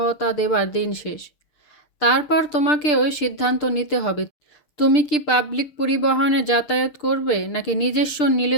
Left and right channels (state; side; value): late; right; 6.7 ms